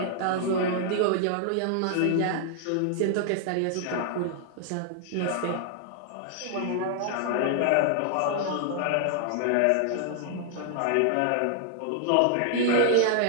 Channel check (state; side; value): different; both; correlation 0.00